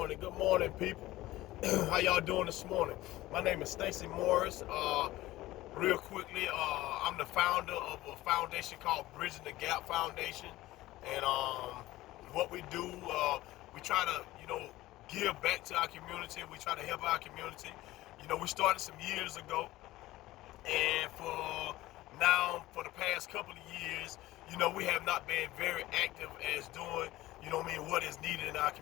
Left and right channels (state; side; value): quieter; right; 17.0 dB